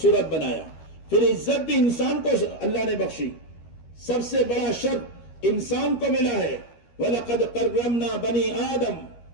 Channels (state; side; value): late; right; 13 ms